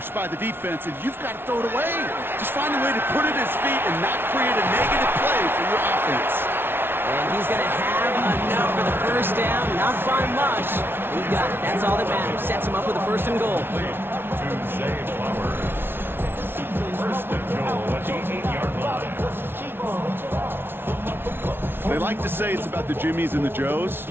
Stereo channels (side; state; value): left; late; 0.11 ms